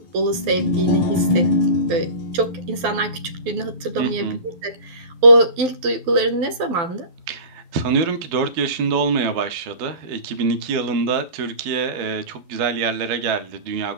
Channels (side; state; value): left; late; 12 ms